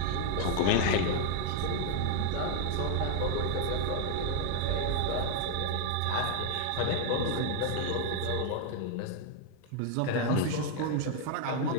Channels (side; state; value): both; different; correlation 0.00